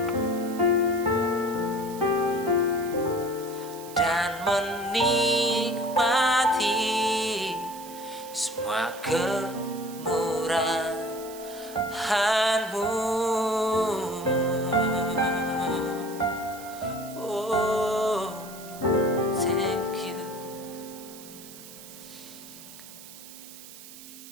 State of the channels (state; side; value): noise; right; hiss, 16 dB below the sound